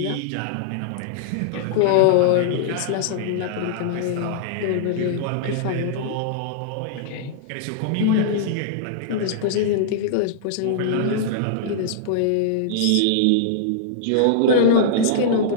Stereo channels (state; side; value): different; both; correlation -0.02